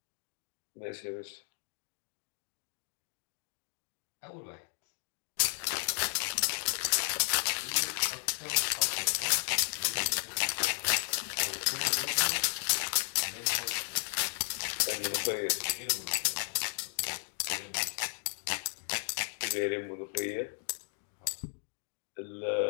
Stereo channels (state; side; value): silent; right; digital silence